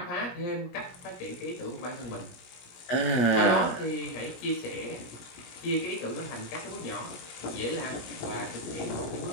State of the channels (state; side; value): late; right; 17 ms